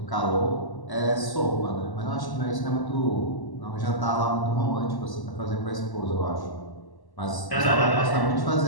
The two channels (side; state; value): right; late; 1.1 ms